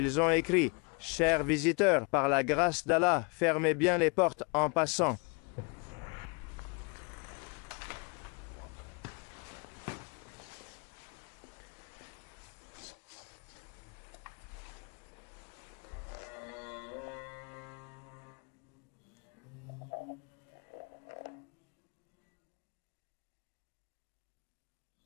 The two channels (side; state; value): right; quieter; 33.3 dB